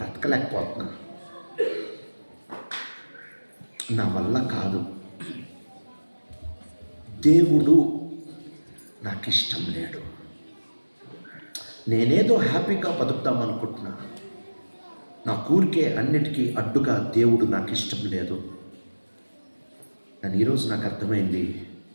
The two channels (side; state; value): both; inverted; correlation -1.00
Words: నా వల్ల కాదు, దేవుడు నాకు ఇష్టం లేడు, నేనేదో హ్యాపీగా బతుకుతామనుకుంటున్నా, నా ఊరికే అన్నిటికీ అడ్డుగా దేవుడు నాకు ఇష్టం లేదు. కానీ ఈరోజు నాకు అర్థమైంది,